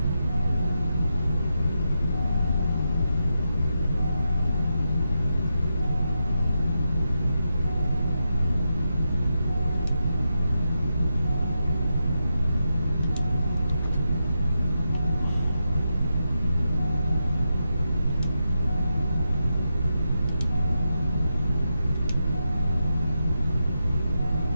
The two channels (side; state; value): both; inverted; correlation -0.86